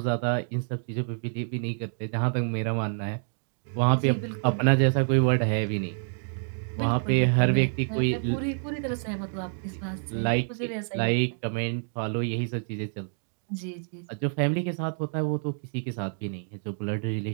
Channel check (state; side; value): silent; left; digital silence